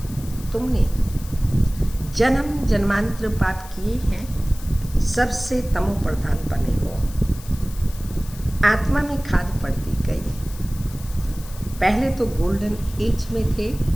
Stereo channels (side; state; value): left; noise; hiss, 18 dB below the sound